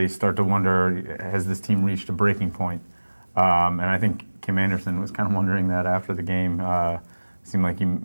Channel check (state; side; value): inverted; both; correlation -1.00